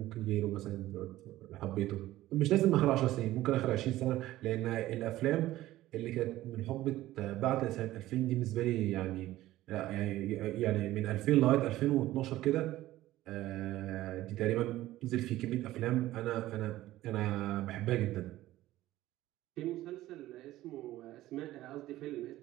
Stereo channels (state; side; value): quieter; left; 15.6 dB